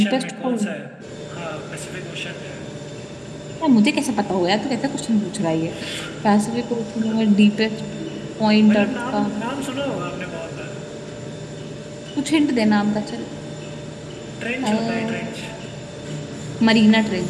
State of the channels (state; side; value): identical; both; correlation 1.00